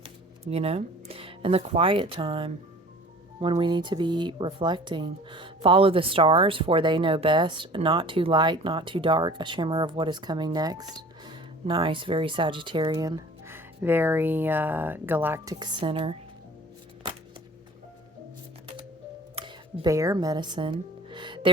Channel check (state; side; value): normal; both; correlation 0.45